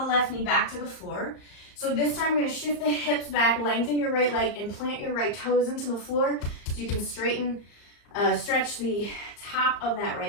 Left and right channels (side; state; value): right; late; 34 ms